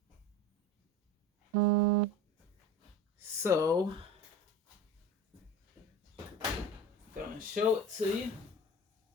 So, gonna show it to you.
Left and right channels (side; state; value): both; normal; correlation 0.34